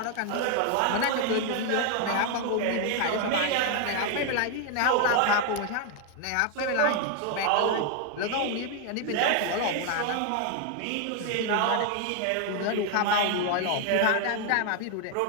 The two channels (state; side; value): different; both; correlation 0.00